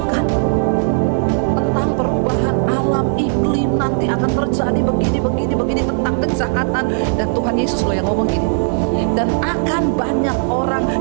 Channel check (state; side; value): silent; left; 68 dB below the other